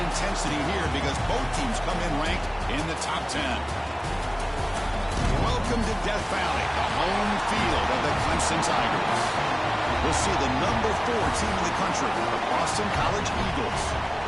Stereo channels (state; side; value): identical; both; correlation 1.00